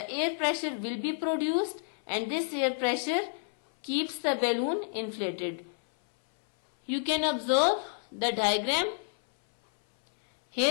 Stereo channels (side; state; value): right; silent; 58 dB below the other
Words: air pressure will be produced, and this air pressure keeps the balloon inflated. You can observe the diagram.